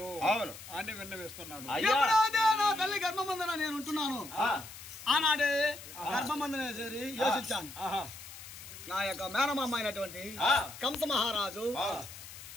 అని విన్నవిస్తున్నాడు. నా తల్లి గర్భమందన నేను ఉంటున్నాను. ఆనాడే గర్భమందన చేరి యోచించాను. నా యొక్క మేనమామ అయినటువంటి కంస మహారాజు,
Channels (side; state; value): left; noise; hiss, 14 dB below the sound